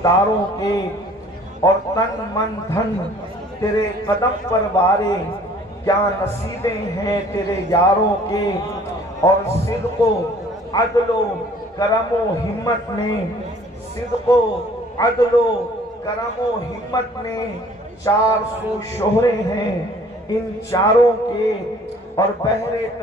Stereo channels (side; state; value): both; normal; correlation 0.54